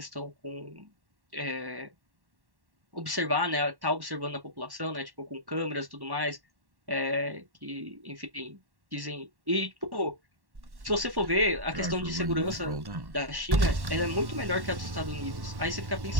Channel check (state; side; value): late; left; 1.1 ms